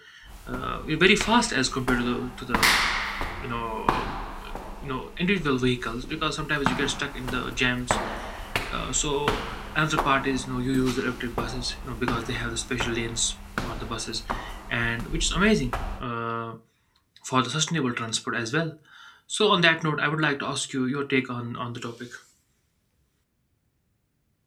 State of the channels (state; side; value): identical; both; correlation 1.00